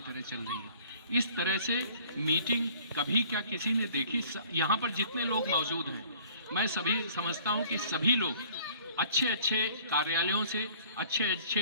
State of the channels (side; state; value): both; inverted; correlation -0.52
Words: तरह चल रही है। इस तरह से मीटिंग कभी क्या किसी ने देखी? यहाँ पर जितने लोग मौजूद हैं, मैं सभी समझता हूँ कि सभी लोग अच्छे अच्छे कार्यालयों से, अच्छे